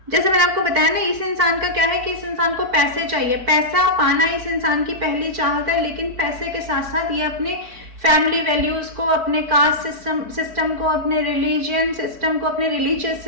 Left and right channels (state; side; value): late; left; 4.6 ms